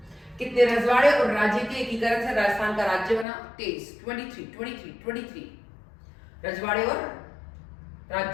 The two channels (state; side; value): drops out; right; at 3.2 s